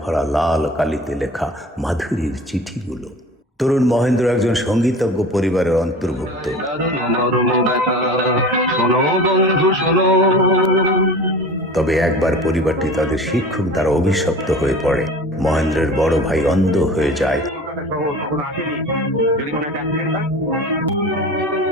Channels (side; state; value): both; normal; correlation 0.38